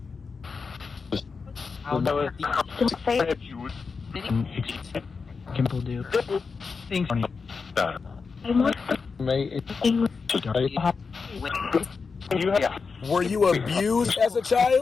Were you abused as a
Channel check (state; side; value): quieter; right; 5.0 dB